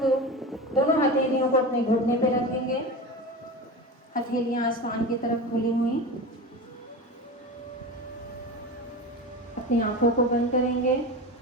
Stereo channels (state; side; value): normal; both; correlation 0.27